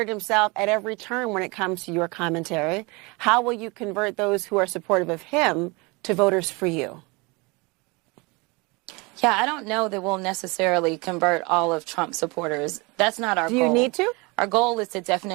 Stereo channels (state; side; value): quieter; left; 27.0 dB